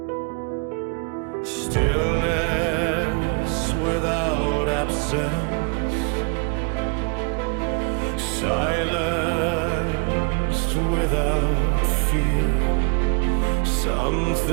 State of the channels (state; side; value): quieter; left; 34.6 dB